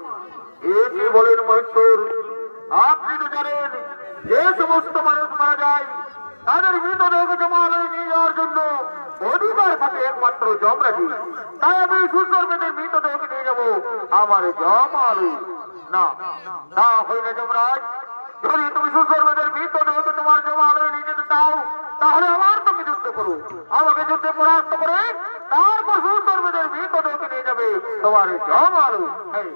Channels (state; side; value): inverted; both; correlation -1.00